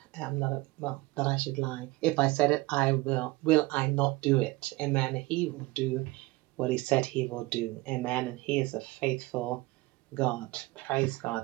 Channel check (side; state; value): left; quieter; 21.2 dB